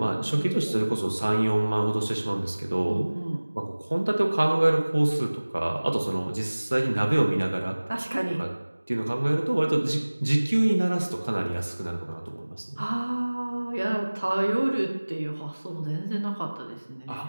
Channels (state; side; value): inverted; both; correlation -1.00